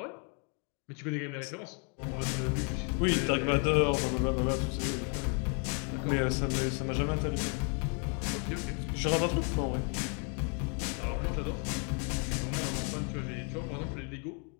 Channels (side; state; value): right; quieter; 38.5 dB